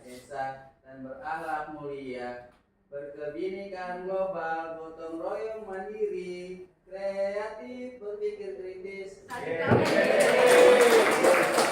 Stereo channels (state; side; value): identical; both; correlation 1.00